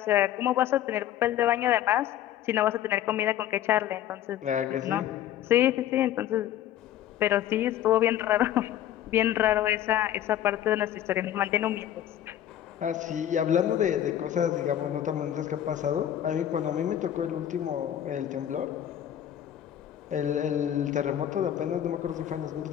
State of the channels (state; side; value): quieter; right; 11.4 dB